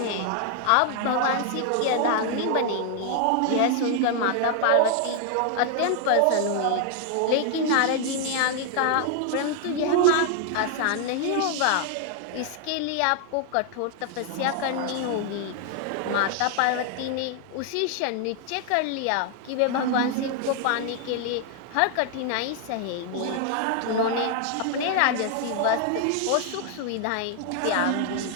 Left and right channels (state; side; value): different; both; correlation 0.00